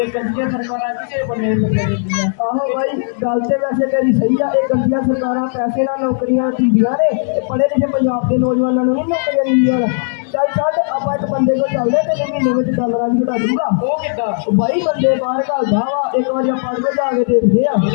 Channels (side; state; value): right; silent; 69 dB below the other